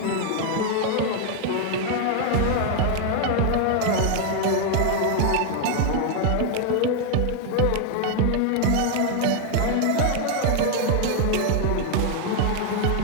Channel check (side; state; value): both; different; correlation 0.00